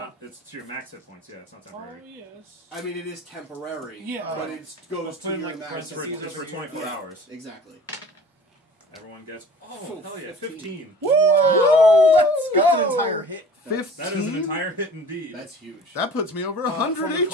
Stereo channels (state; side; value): normal; both; correlation 0.44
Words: it's to your max hit points. Yeah, it's not Oh, temporary. yes. I mean, it is temporary. Yeah. But it goes to put in, your like, It's maximum. for, it's for 24 Yeah. hours. Exactly. Everyone gets, Oh, hell yeah, 15. 15. Woo! Let's go! That's an entire hit. 15? That is an entire hit indeed. That's huge. That puts me over 100 for the